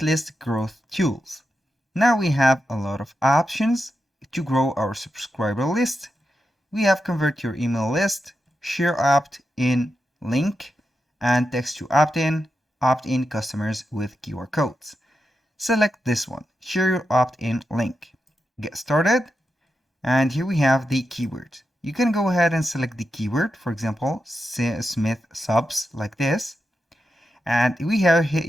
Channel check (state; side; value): normal; both; correlation 0.88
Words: list growth tools. Now we have a lot of options to grow our subscriber list. We have convert your email list, share opt-in link, and text to opt-in customers with QR codes. Select this one, share your opt-in link. Get started, and here we have the keyword. You can go ahead and select the keyword, for example, Smith subs like this. And you